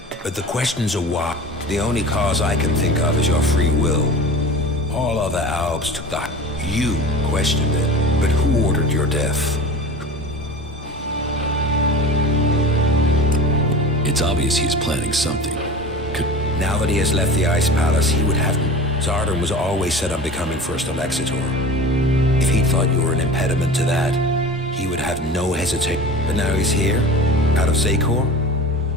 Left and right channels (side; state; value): both; normal; correlation 0.36